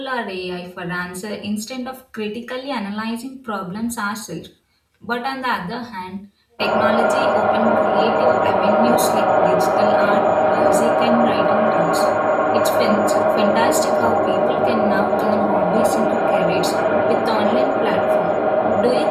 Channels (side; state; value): both; identical; correlation 1.00